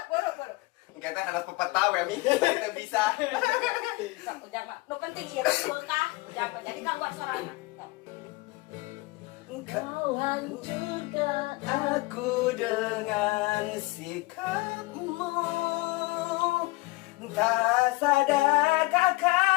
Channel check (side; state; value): right; quieter; 22.7 dB